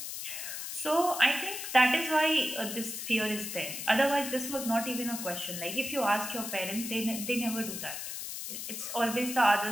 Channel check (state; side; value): noise; left; hiss, 6 dB below the sound